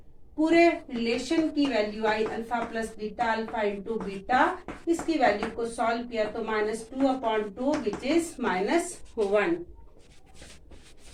पूरे रिलेशन की वैल्यू आई alpha plus beta alpha into beta. इसकी वैल्यू को सॉल्व किया तो -2 upon 2 which is -1।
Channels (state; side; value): identical; both; correlation 1.00